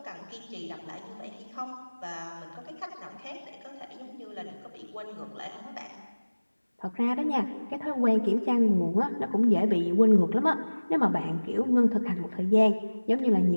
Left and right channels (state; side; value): inverted; both; correlation -1.00